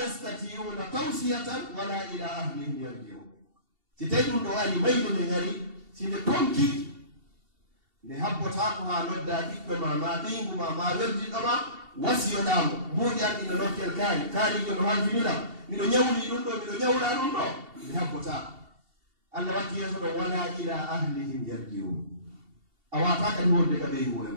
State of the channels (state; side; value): late; left; 2.7 ms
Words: tawsiyatan wala ila ahlihim yarjiun si tawi ɗum ɗo ari mayde nde ngari si nde tonki nde habbotako ha nodda ɓiɓɓe ma ɓingu ma weldiɗɗo ma wasiyoɗamo mbuɗian ino nokkel kaarijo no halfiniɗam miɗo ñawli ɗum ɗo miɗo ñawla ɗum ɗo nde habbotako allah watti yeeso ɗo wala ila ahlihim yarjiun a wata kadi wonde ka ɓeydi wone